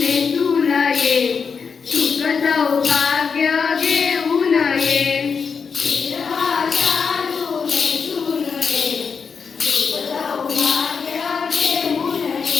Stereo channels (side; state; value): right; quieter; 5.8 dB